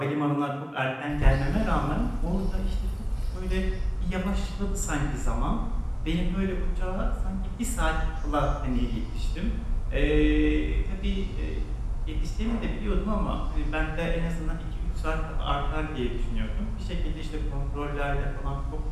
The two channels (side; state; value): both; identical; correlation 1.00